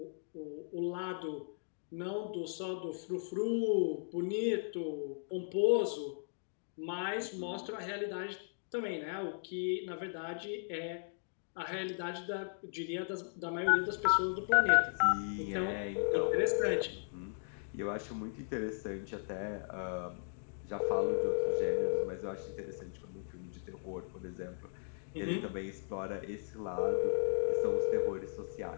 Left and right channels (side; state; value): right; silent; digital silence